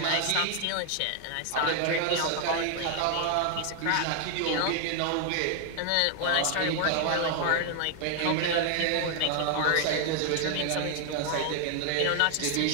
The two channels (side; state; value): both; different; correlation 0.00